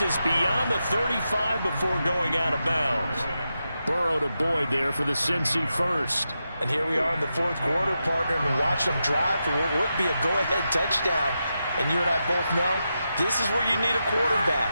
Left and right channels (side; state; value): both; inverted; correlation -0.88